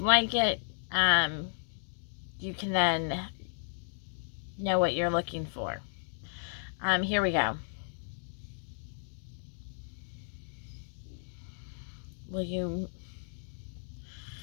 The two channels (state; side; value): silent; right; digital silence